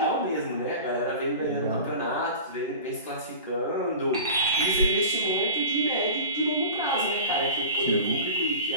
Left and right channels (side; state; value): both; inverted; correlation -0.34